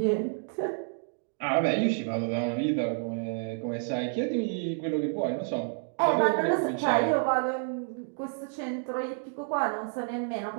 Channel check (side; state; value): left; silent; 58 dB below the other